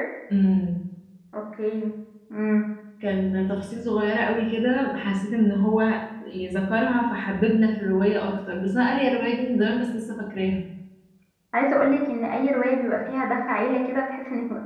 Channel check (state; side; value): identical; both; correlation 1.00